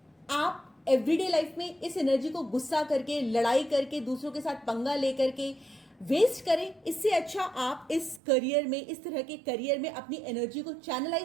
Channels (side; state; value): left; drops out; at 8.2 s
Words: आप एवरीडे लाइफ में इस एनर्जी को गुस्सा करके, लड़ाई करके, दूसरों के साथ पंगा लेकर के वेस्ट करें। इससे अच्छा आप इस करियर में, इस तरह के करियर में अपनी एनर्जी को